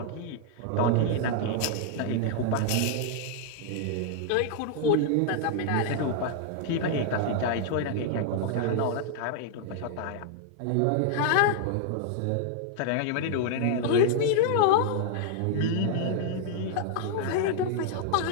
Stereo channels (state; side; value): different; both; correlation 0.00